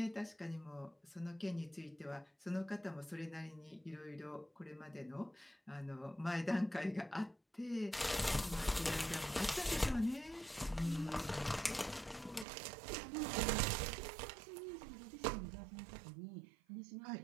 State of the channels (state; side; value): drops out; left; at 12.5 s